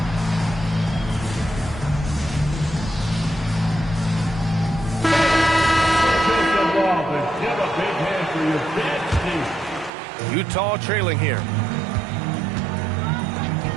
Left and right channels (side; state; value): left; drops out; at 9.9 s